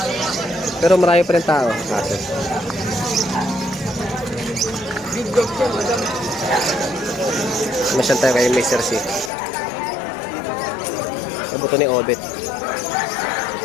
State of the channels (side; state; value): right; drops out; at 9.3 s